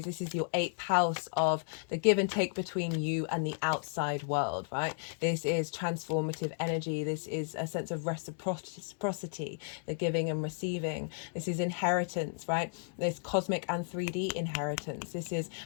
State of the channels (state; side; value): silent; right; digital silence